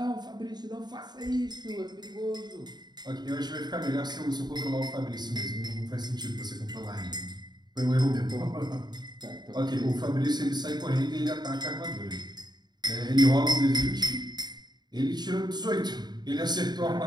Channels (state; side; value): late; left; 0.20 ms